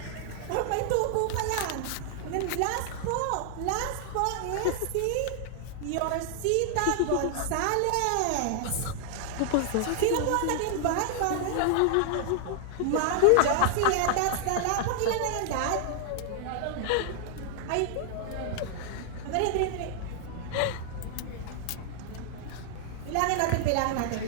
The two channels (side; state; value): both; different; correlation 0.00